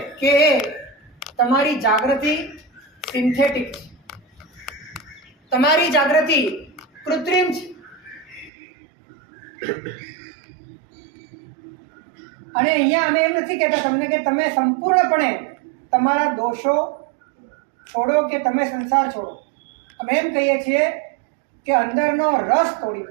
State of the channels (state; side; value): drops out; left; at 8.5 s